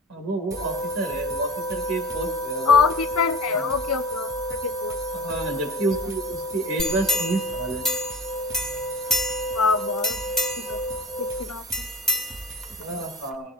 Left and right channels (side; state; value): both; normal; correlation 0.36